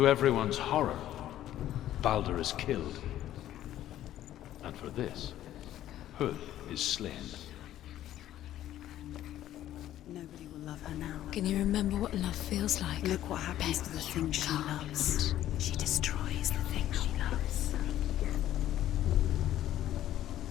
everyone's horror, Balder is killed. And for this, Huth is slain. Nobody will love her now. Can you remember what love feels like? Look what happens to the things she loves. She destroys the things she loves.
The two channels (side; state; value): right; quieter; 12.7 dB